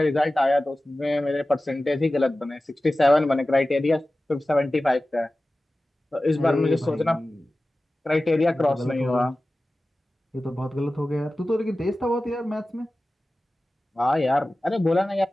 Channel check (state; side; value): normal; both; correlation 0.96